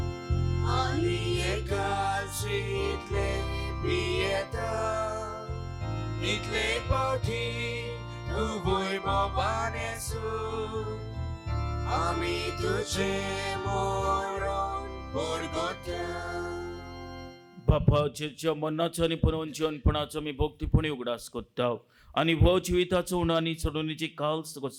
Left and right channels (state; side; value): identical; both; correlation 1.00